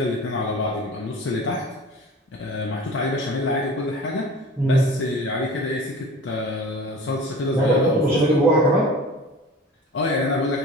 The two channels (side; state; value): both; normal; correlation 0.40